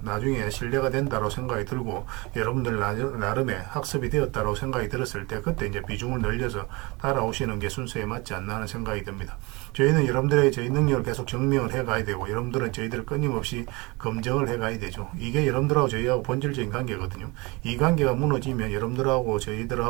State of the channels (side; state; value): left; quieter; 25.8 dB